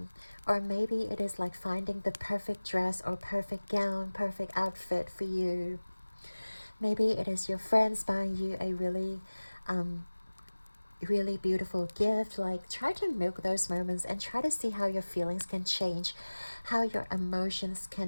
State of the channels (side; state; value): both; inverted; correlation -1.00